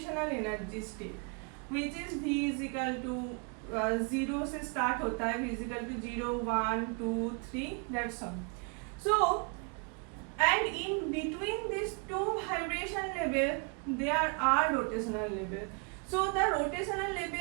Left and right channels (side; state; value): left; quieter; 35.3 dB